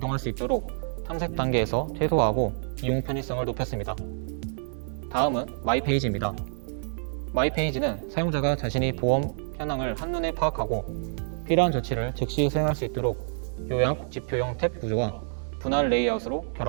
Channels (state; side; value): silent; left; digital silence